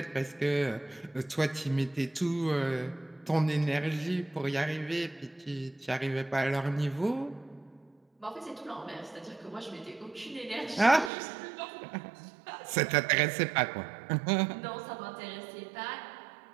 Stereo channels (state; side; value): drops out; left; at 11.1 s